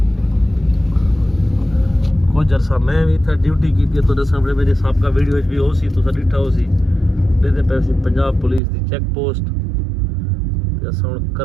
कुछ अरसा मैं भी था ड्यूटी की थी तो सामने मेरे साहब का वीडियो भी हो सी तो डिठा हो सी देते पैसे पंजाब पुलिस की चेक पोस्ट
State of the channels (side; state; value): left; drops out; at 8.6 s